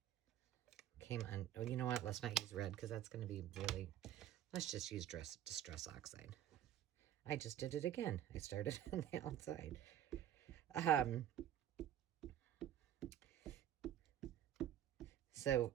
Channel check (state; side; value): quieter; left; 11.0 dB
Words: came on. Oh, you know what? Let's not use red because that's going to be really, let's just use Distress Oxide. I just did it again. I started on the outside. So